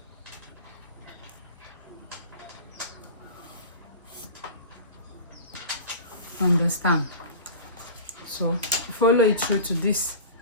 Understand? So follow it through to this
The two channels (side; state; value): both; inverted; correlation -0.35